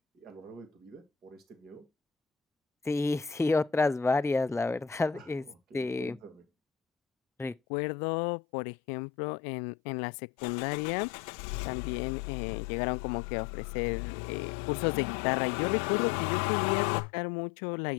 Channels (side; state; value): right; drops out; at 7.6 s